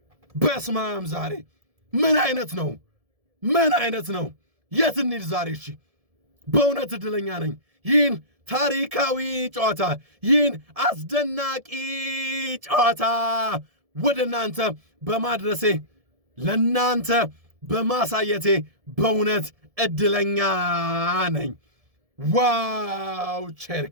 በስማም ዛሬ ምን አይነት ነው? የት እንሂድ ዛሬ? እሺ በእውነት እድለኛ ነኝ ይህን ታሪካዊ ጨዋታ፣ ይህን አስደናቂ ጨዋታ ወደ እናንተ በማድረሴ ለእናንተ በማሳየቴ በእውነት እድለኛ ነኝ። ዋው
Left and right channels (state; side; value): late; left; 1.7 ms